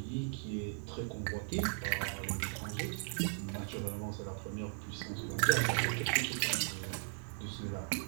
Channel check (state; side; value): silent; left; 53 dB below the other